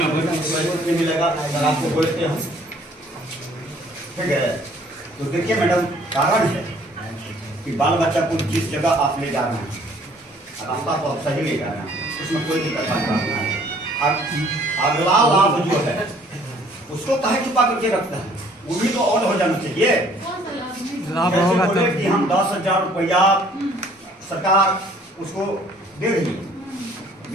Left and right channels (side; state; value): both; normal; correlation 0.58